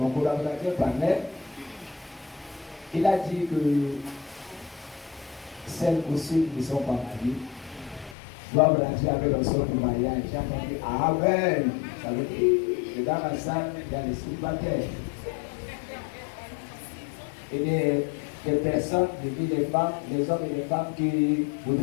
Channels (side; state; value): right; drops out; at 8.2 s